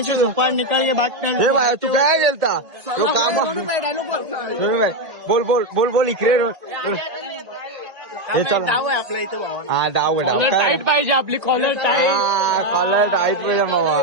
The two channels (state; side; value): late; left; 2.1 ms